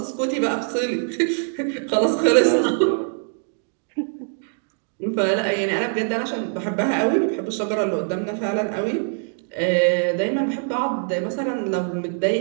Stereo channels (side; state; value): left; silent; 63 dB below the other